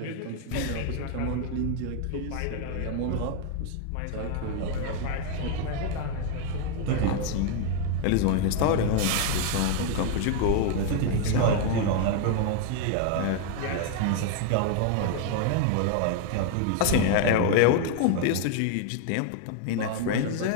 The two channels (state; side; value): different; both; correlation 0.01